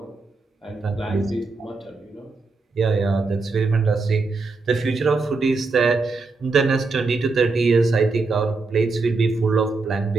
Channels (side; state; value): left; quieter; 3.9 dB